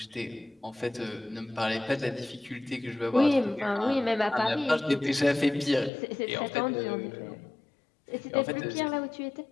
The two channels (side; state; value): right; drops out; at 5.9 s